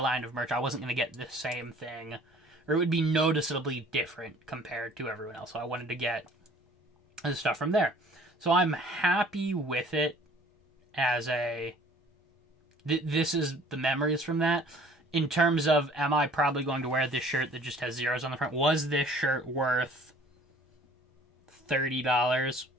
line of merch. I wasn't going to get the same thing, or it would be noticeably different compared to everyone else. So I wanted to get the stuff from there. So I'm happy with it as a, this is the memories from that. In terms of, am I probably going to wear this shirt that just has zeros on the front? Was this shirt worth $30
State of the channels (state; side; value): normal; both; correlation 0.53